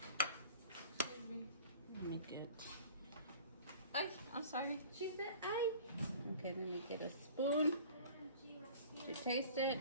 me get. I'm sorry. She said Okay, let me get a spoon to taste it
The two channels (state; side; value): inverted; both; correlation -0.45